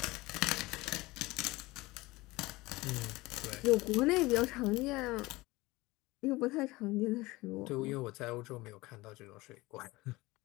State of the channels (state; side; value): quieter; right; 20.9 dB